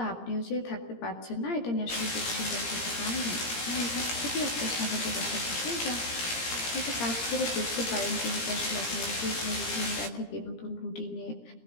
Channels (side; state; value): right; late; 17 ms